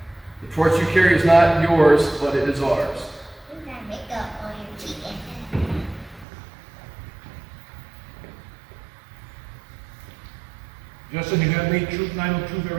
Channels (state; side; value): drops out; left; at 6.2 s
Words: The torch you carry is not yours, but it is ours. Justin, you have made Troop 902